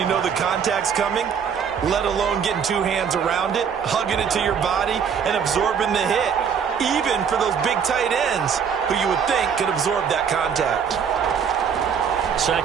know the contact's coming, let alone getting 2 hands around it, hugging it to your body, and absorbing the hit, even for those big tight ends who you would think could absorb that contact.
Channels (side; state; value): left; quieter; 7.1 dB